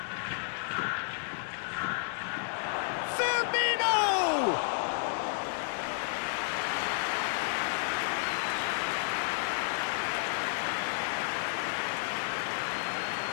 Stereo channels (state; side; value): silent; right; digital silence